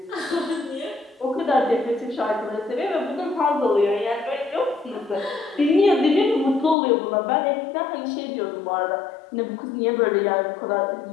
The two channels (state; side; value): drops out; right; at 6.8 s